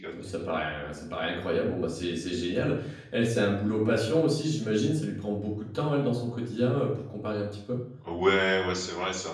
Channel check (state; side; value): identical; both; correlation 1.00